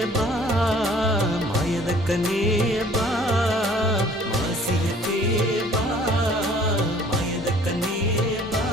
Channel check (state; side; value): noise; left; hum, 30 dB below the sound